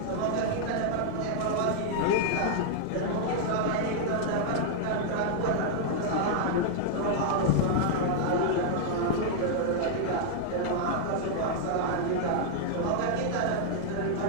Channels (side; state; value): both; different; correlation -0.01